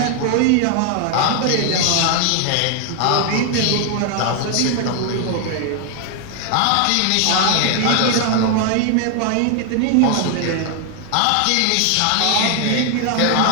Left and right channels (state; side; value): different; both; correlation 0.00